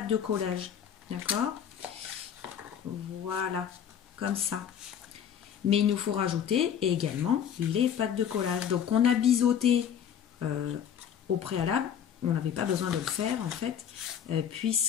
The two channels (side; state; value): right; quieter; 8.7 dB